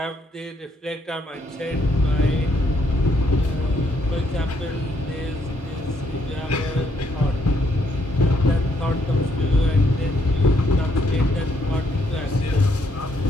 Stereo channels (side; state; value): both; normal; correlation 0.72